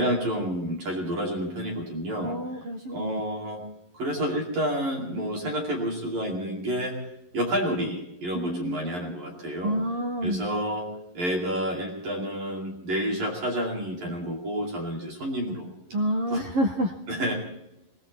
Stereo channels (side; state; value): left; late; 11 ms